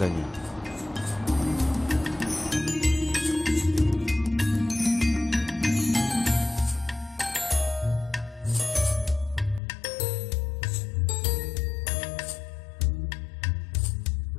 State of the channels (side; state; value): right; drops out; at 9.6 s